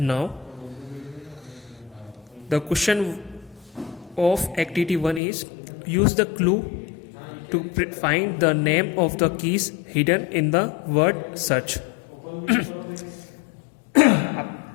The question of activity 1 is use the clue to find the name of the keys hidden in the word search.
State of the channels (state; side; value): drops out; right; at 5.2 s